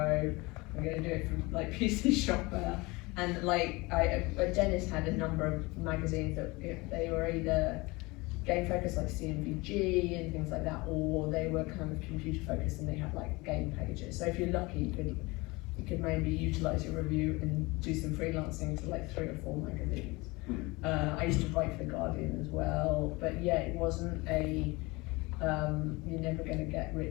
I'm going to do it for like PC Shopper, and like Dennis had a number of magazines that they were either game focused like CMVG and things like that, or they were kind of computer focused and they had like game pages. So if you're lucky, you could maybe utilize your review and do some freelancing to like 3 or 4 magazines. I used to write for The Guardian as well, but yeah, it wasn't you're never going to get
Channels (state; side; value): quieter; right; 23.9 dB